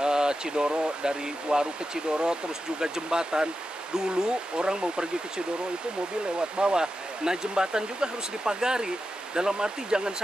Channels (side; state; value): both; normal; correlation 0.90